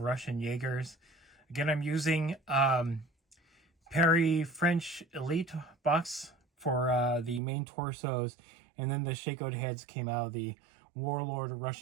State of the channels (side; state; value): left; drops out; at 7.4 s